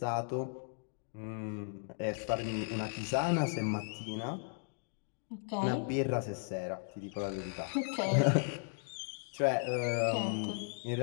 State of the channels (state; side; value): silent; right; digital silence